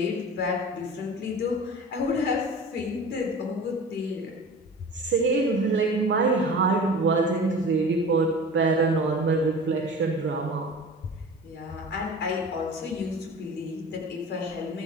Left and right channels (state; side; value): normal; both; correlation 0.37